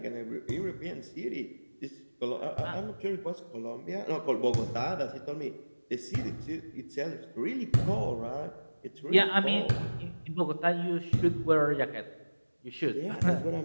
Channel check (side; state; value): both; inverted; correlation -1.00